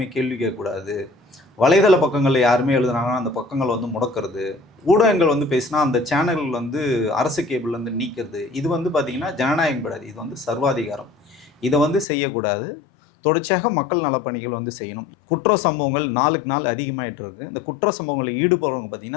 கேள்வி கேட்கக்கூடாது, வலைதள பக்கங்களில் யாருமே எழுதுனாங்கன்னா அந்த பக்கங்கள் முடக்கிறது, ஊடகங்கள் பேசினா அந்த சேனல்கள் அரசு கேபிள்லேருந்து நீக்கிறது. இது பார்த்திங்கன்னா ஜனநாயகம் கிடையாது, இது சர்வாதிகாரம். இதை செய்யக்கூடாது. தொடர்ச்சியாக மக்கள் நலப்பணிகள் செய்யணும். குற்ற சம்பவங்கள் நாளுக்கு நாள் அதிகமாகிட்டு இருக்குது. இந்த குற்ற சம்பவங்களில் ஈடுபடுறவங்க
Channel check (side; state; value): right; drops out; at 12.1 s